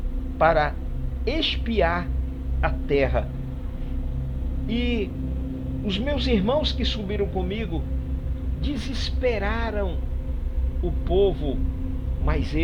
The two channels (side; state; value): both; identical; correlation 1.00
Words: para espiar a terra. E os meus irmãos que subiram comigo desesperaram o povo, mas